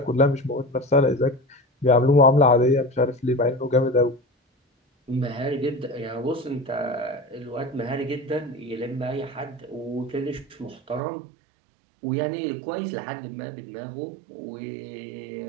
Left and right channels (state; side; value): drops out; left; at 11.0 s